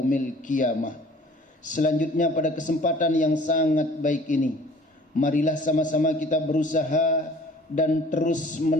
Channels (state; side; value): normal; both; correlation 0.50